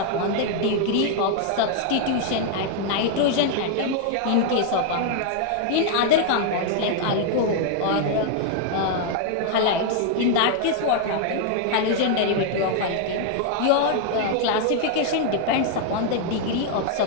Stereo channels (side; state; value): both; different; correlation 0.00